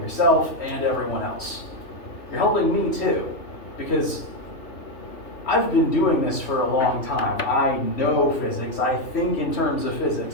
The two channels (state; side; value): late; right; 3.0 ms